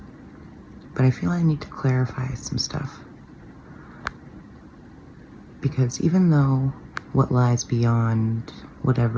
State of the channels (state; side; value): identical; both; correlation 1.00